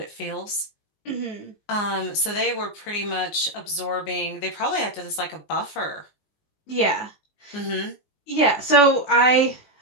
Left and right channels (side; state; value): right; late; 19 ms